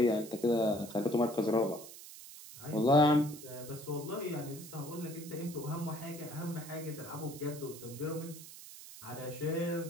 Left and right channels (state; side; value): noise; right; hiss, 15 dB below the sound